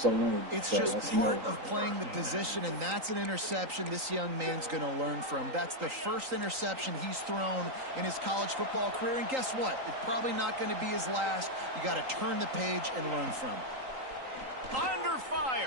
winning. It's so just part of playing the position, and that's an interception this young man's going to learn from. That's the first interception he's thrown in his college football career, and guess what? It's probably not going to be his last. You got to turn the page and learn from it. Under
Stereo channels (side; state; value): left; late; 3.8 ms